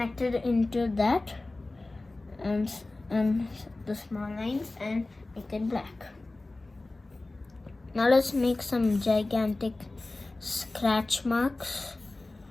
into that, and the small lines, and make it black. Now let's make some gigantic scratch marks.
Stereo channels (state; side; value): quieter; right; 3.0 dB